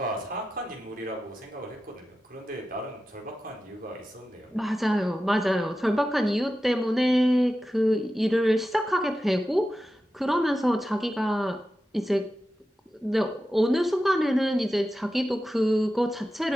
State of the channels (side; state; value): both; normal; correlation 0.92